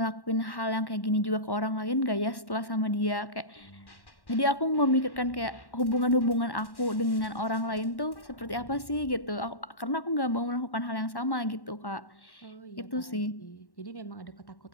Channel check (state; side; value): late; right; 1.1 ms